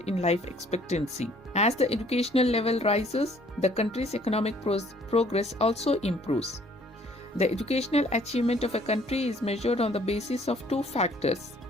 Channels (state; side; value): normal; both; correlation 0.59